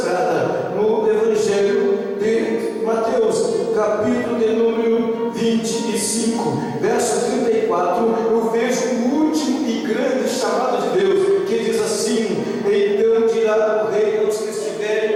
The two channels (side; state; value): both; identical; correlation 1.00